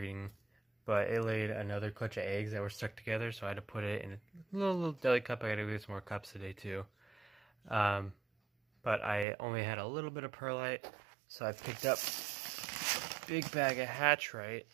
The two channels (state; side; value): drops out; left; at 9.2 s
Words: but it laid another clutch of eggs that were stuck together, so I had to put it in a little deli cup. I gotta get some more cups today too. But I only had a little bit of perlite, so I picked up a big bag of Hatchite.